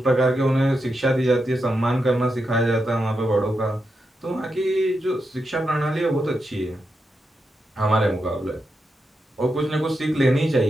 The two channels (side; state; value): both; normal; correlation 0.86